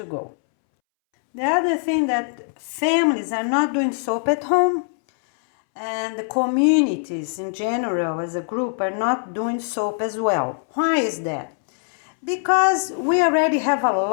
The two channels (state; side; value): silent; right; 64 dB below the other